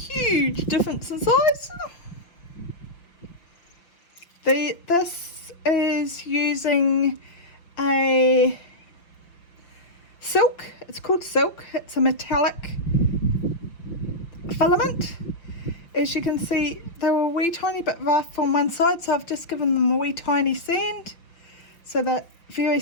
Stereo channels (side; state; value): right; late; 5.9 ms